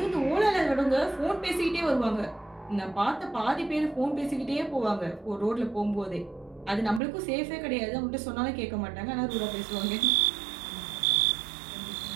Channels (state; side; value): drops out; left; at 7.0 s